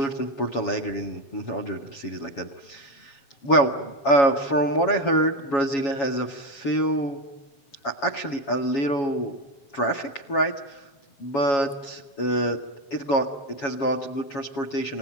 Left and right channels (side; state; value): right; late; 7.2 ms